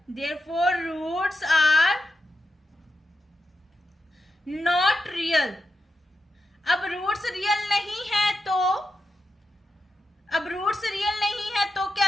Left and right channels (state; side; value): normal; both; correlation 0.88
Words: therefore roots are not real. अब रूट्स रियल नहीं है तो